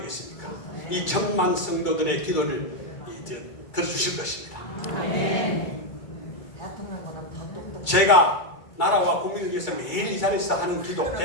이 1000만 성도들의 기도를 이제 들어주실 것입니다. 제가 나라와 국민을 위해서 매일 이 자리에서 하는 기도,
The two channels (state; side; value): late; right; 2.3 ms